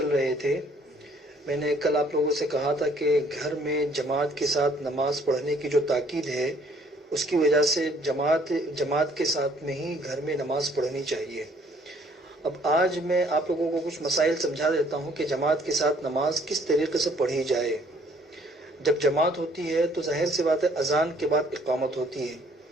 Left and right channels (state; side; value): normal; both; correlation 0.61